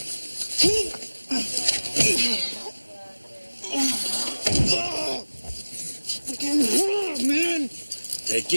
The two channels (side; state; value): both; inverted; correlation -1.00